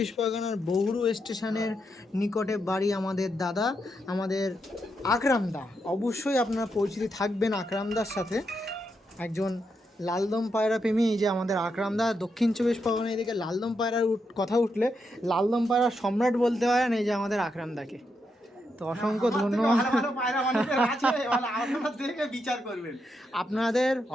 পরগনার বগুড়া স্টেশনের নিকটে বাড়ি আমাদের দাদা, আমাদের আকরামদা। অবশ্যই আপনারা পরিচিতি থাকবেন আকরামদার সাথে, একজন লালদম পায়রা প্রেমী। এই যে আমাদের আকরামদা, দক্ষিণ 24 পরগনা এদিকে লালদম পায়রার কথা উঠলে লালদম পায়রার সম্রাট বলতে পারেন এই যে আমাদের আকরামদাকে। তো অসংখ্য ধন্যবাদ। আপনাদের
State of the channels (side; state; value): both; normal; correlation 0.82